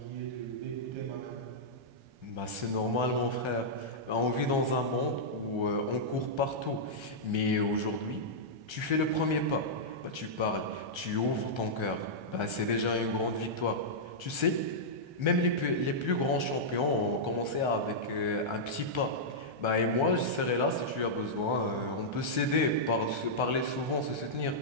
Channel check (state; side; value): late; left; 1.3 ms